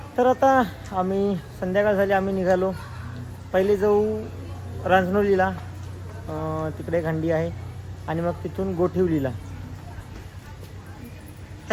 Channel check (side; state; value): both; identical; correlation 1.00